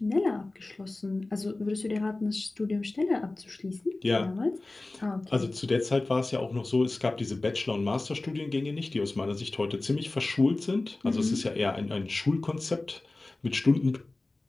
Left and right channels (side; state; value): right; quieter; 3.0 dB